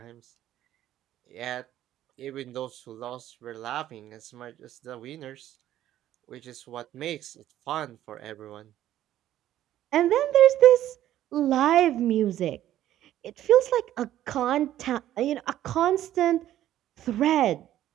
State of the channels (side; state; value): left; quieter; 12.7 dB